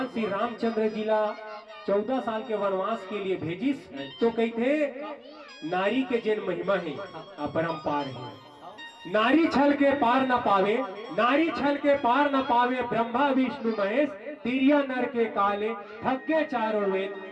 श्री रामचंद्र जी ला 14 साल के वनवास के लिए भेजिस तो कहते नारी के जैन महिमा है अपरंपार है। नारी छल के पार न पावे नारी छल के पार न पावे ब्रह्मा विष्णु महेश तिरिया नर के काले थके चारों वेद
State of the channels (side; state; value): both; identical; correlation 1.00